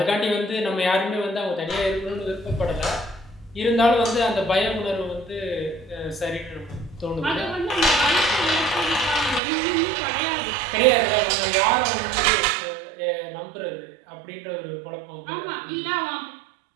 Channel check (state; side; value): drops out; left; at 9.4 s